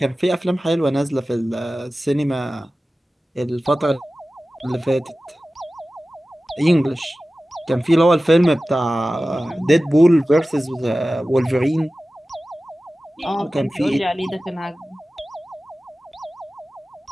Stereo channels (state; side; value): normal; both; correlation 0.96